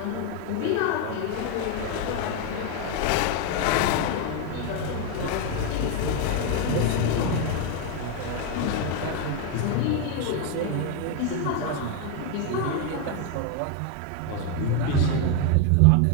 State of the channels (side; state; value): both; different; correlation 0.01